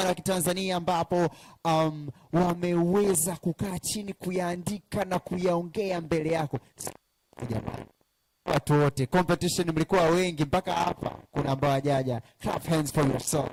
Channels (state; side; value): identical; both; correlation 1.00